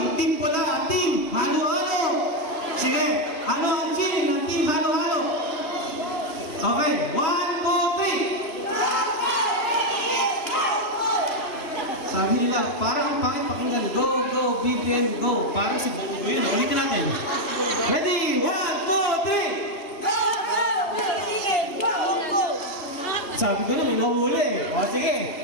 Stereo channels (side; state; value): right; late; 2.9 ms